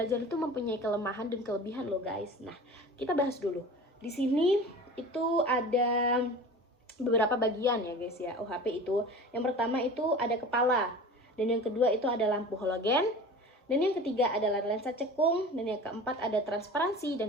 itu mempunyai kelemahan dan kelebihan loh guys. Nah, kita bahas dulu. Di sini itu ada beberapa bagian ya guys ya, OHP itu. Yang pertama itu ada kepala, dan yang kedua itu ada lampu halogen, dan yang ketiga adalah lensa cekung, dan yang keempat ada transparansi,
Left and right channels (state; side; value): normal; both; correlation 0.37